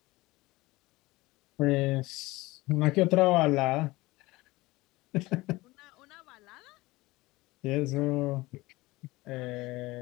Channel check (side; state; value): right; quieter; 20.6 dB